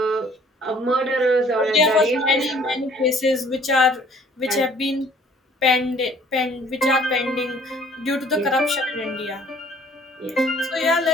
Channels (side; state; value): both; normal; correlation 0.57